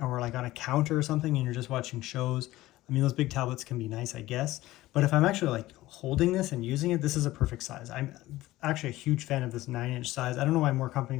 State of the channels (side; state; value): right; quieter; 17.0 dB